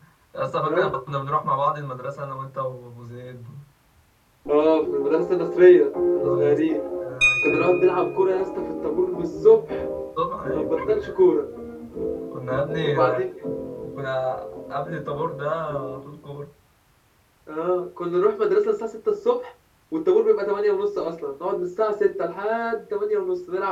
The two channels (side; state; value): both; identical; correlation 1.00